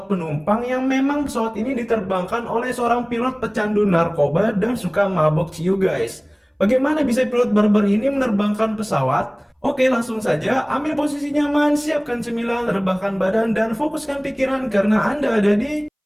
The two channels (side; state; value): both; identical; correlation 1.00